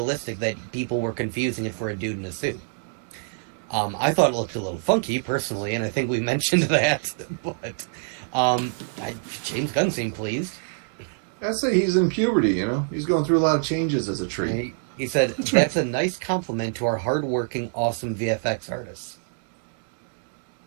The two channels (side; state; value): left; silent; digital silence